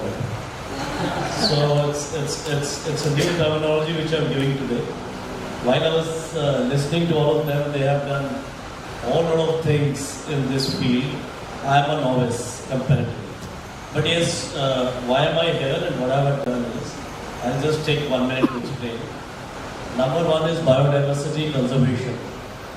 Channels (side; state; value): both; identical; correlation 1.00